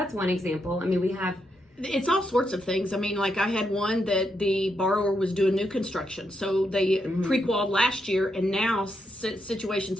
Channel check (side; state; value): both; normal; correlation 0.81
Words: one example. I mean, we have It's all sorts of things. I mean, like I had one that the borrower was doing new construction. So they pre-qualified last year, and now situations